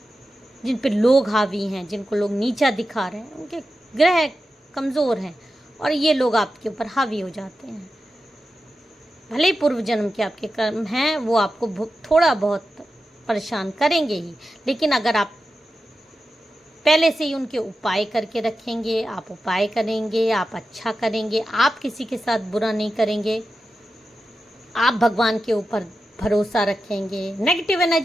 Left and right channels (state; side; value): normal; both; correlation 0.91